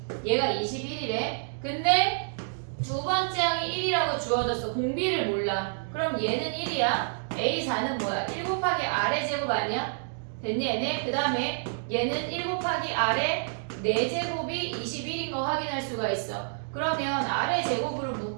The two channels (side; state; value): left; silent; digital silence